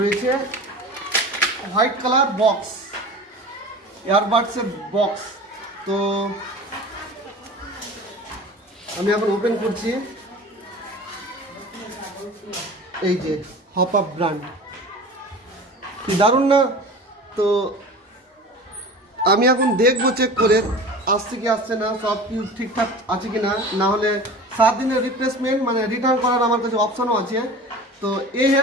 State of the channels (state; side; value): normal; both; correlation 0.37